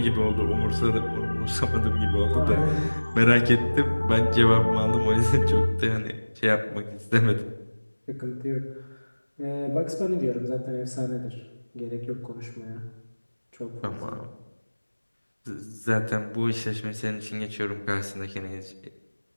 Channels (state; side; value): inverted; both; correlation -1.00